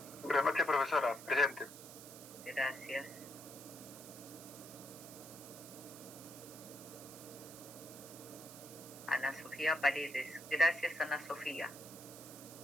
Buenas noches, profesora, presente. Gracias. Ana Sofía Paredes. Gracias, Ana Sofía.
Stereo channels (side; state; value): right; noise; hiss, 14 dB below the sound